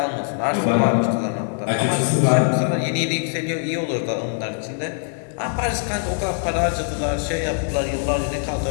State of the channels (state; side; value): silent; right; 63 dB below the other